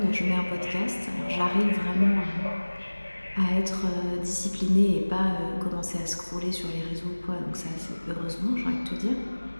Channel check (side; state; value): both; inverted; correlation -1.00